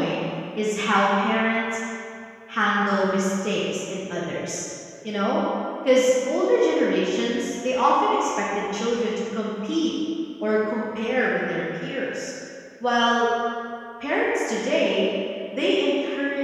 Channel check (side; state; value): both; identical; correlation 1.00